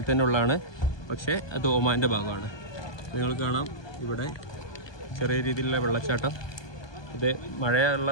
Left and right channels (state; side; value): late; right; 1.2 ms